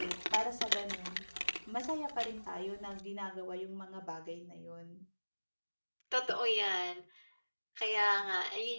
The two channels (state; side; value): inverted; both; correlation -1.00